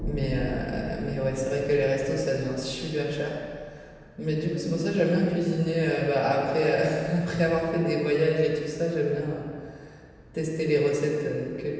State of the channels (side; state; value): both; identical; correlation 1.00